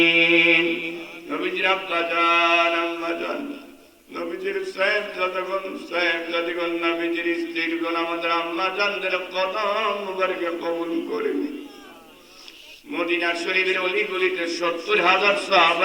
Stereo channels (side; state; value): both; identical; correlation 1.00